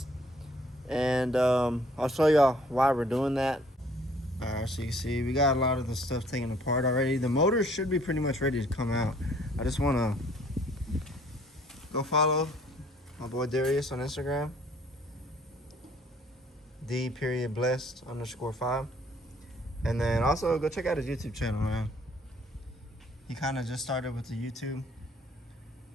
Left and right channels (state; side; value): normal; both; correlation 0.59